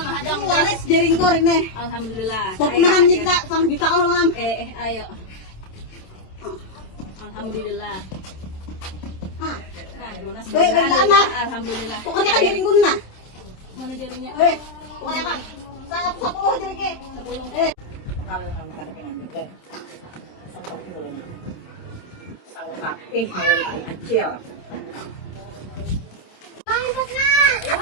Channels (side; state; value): right; late; 27 ms